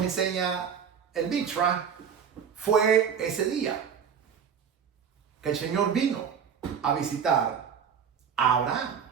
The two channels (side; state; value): left; quieter; 7.3 dB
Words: enseña el Mitra, fue ese día que el Señor vino a visitar a Abraham.